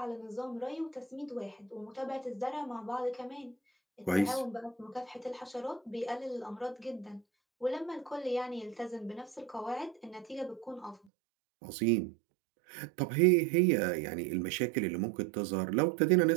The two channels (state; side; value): drops out; left; at 11.0 s